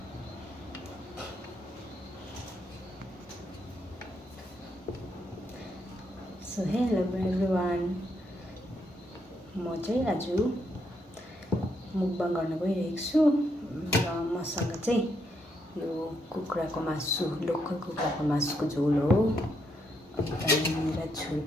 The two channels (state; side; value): normal; both; correlation 0.77